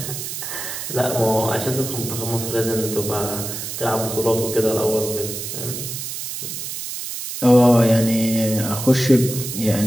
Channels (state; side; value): noise; right; hiss, 6 dB below the sound